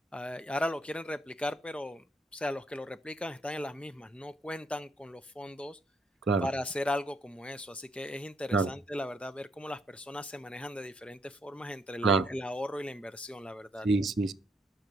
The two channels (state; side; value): normal; both; correlation 0.72